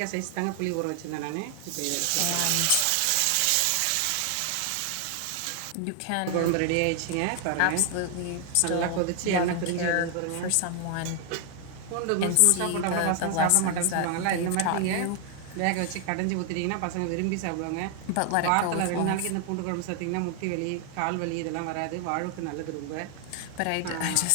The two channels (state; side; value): different; both; correlation 0.00